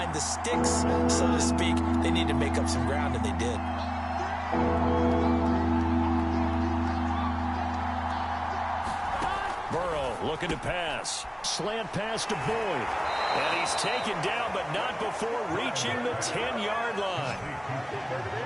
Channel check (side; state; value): both; identical; correlation 1.00